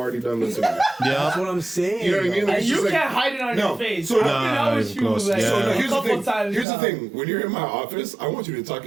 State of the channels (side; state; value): left; drops out; at 6.7 s